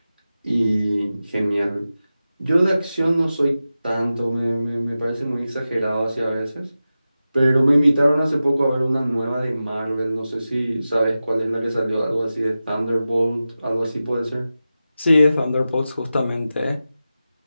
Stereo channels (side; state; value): both; inverted; correlation -0.94